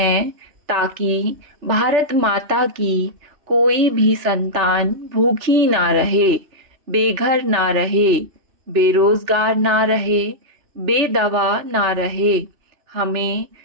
ताकि भारत माता की कोई भी संतान भूखी ना रहे, बेघर ना रहे, बेरोजगार ना रहे, बेदवा ना रहे। हमें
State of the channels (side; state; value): left; late; 3.3 ms